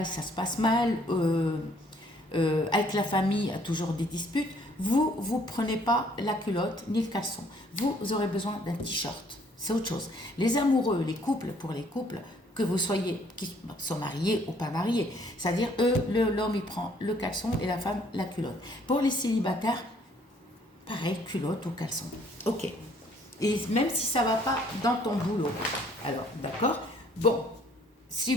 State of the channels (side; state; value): both; normal; correlation 0.62